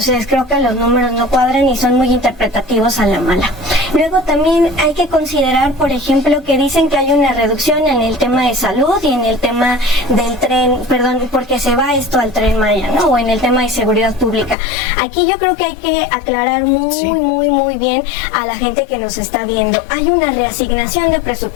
creo que los números no cuadran y son muy interpretativos a la mala. Luego también hay que considerar, por ejemplo, que dicen que hay una reducción en el tema de salud y en el tema del tren, perdón, porque se va esto al Tren Maya, ¿no? O en el tema de seguridad pública. Aquí yo creo que hay que aclarar muy bien a la gente que nos está viendo. Hay una reasignación de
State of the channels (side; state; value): right; drops out; at 14.6 s